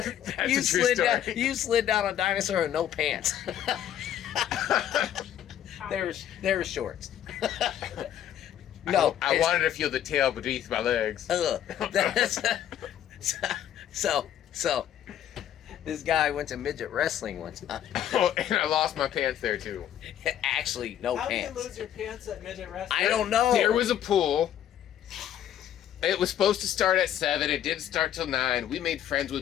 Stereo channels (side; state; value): right; quieter; 10.7 dB